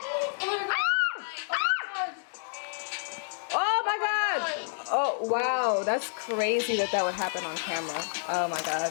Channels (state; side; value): silent; right; digital silence